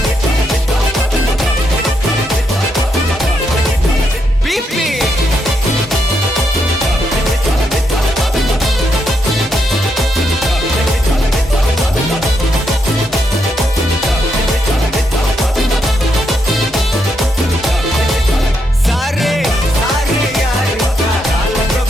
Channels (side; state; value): both; normal; correlation 0.80